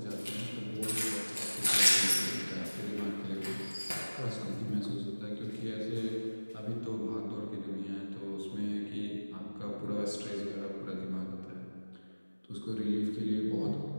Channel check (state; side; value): inverted; both; correlation -1.00